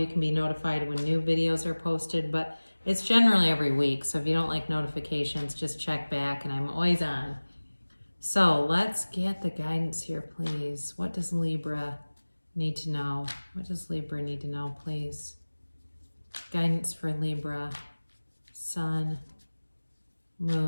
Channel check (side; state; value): both; inverted; correlation -1.00